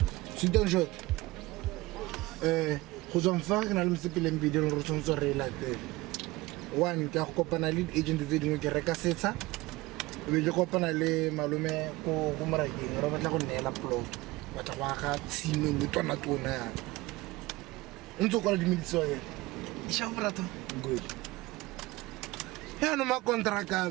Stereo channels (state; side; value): quieter; left; 20.4 dB